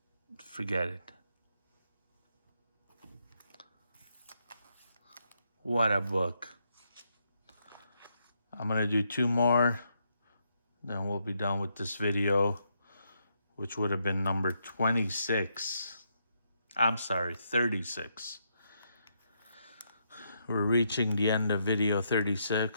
Forget it. What a book. I'm going to do 2 more. Then we'll be done with this video, which would have been number 26. I'm sorry, 36. We're reaching the end of video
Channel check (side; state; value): both; inverted; correlation -0.78